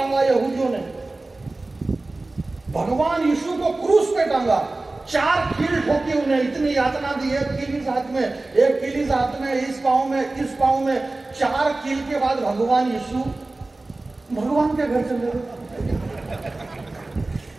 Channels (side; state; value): left; quieter; 3.1 dB